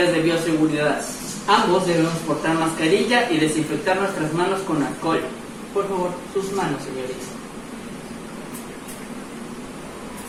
de bioseguridad. Ambos debemos portar mascarilla y desinfectar nuestras manos con alcohol. Por favor, sus manos, señorita.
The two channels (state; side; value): identical; both; correlation 1.00